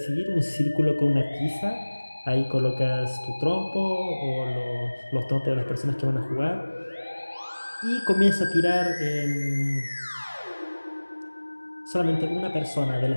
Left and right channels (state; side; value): inverted; both; correlation -1.00